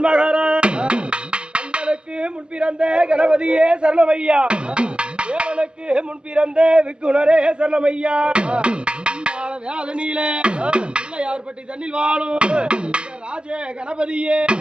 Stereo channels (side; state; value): left; late; 0.050 ms